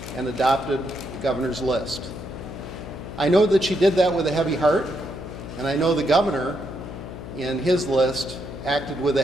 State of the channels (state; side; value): noise; left; hum, 10 dB below the sound